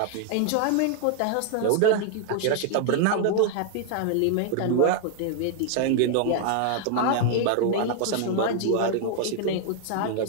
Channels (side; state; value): both; different; correlation 0.00